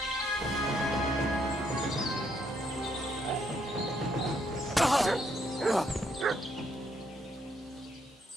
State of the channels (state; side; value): normal; both; correlation 0.73